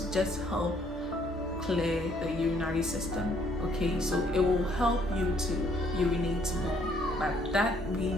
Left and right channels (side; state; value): both; normal; correlation 0.65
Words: just help clear the urinary system. Okay, so it will help you to urinate more, but that